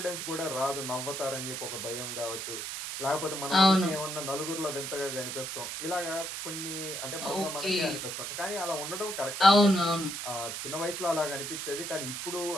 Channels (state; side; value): noise; right; hiss, 5 dB below the sound